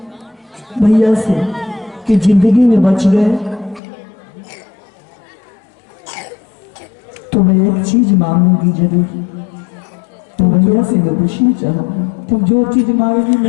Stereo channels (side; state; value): right; drops out; at 3.8 s